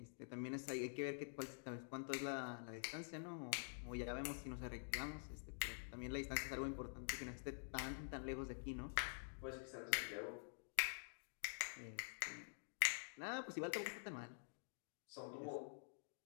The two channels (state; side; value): silent; right; digital silence